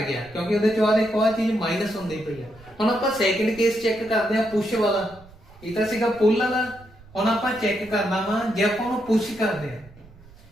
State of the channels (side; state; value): right; noise; rumble, 23 dB below the sound